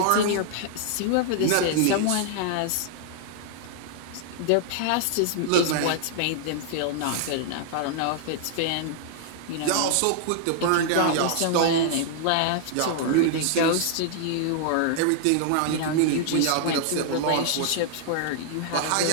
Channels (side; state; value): both; different; correlation -0.01